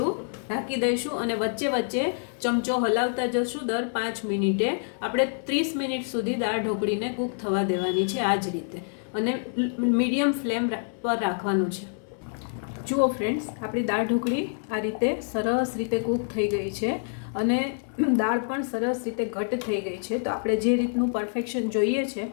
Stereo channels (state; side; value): silent; right; 60 dB below the other